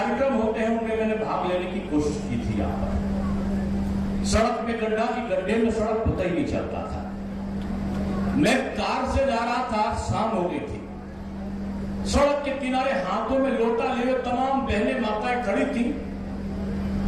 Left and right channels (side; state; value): both; identical; correlation 1.00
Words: होते हैं उनमें मैंने भाग लेने की कोशिश की थी। यहाँ पर सड़क में गड्ढे में सड़क पता ही नहीं चलता था। मैं कार से जा रहा था, शाम हो गई थी, सड़क के किनारे हाथों में लोटा लिए तमाम बहनें माताएं खड़ी थी।